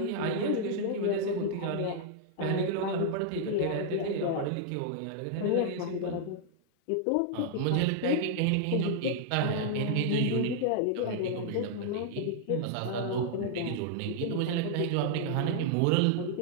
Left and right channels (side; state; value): both; different; correlation -0.01